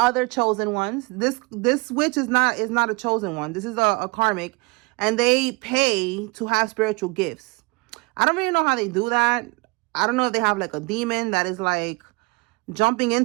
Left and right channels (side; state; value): left; quieter; 27.9 dB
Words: chosen ones. This witch is not a chosen one. This is a karmic, and they pay to have spiritual gifts. I don't really know how they do that. I don't know if they have like a demon that is like jumping